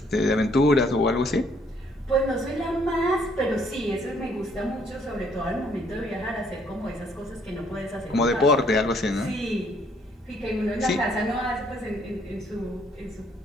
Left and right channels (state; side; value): normal; both; correlation 0.66